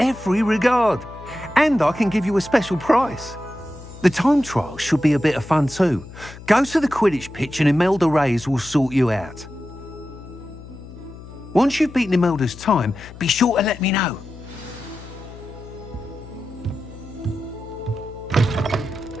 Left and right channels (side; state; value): left; noise; hum, 16 dB below the sound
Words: regard. And I can give you a special price. The time trial should be a bit of fun too. Go to the Quidditch pitch and Imelda Reyes will sort you out. Once you've beaten Imelda's time, be sure to let me know.